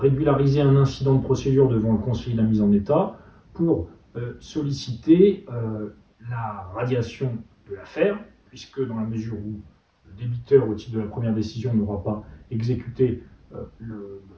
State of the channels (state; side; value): identical; both; correlation 1.00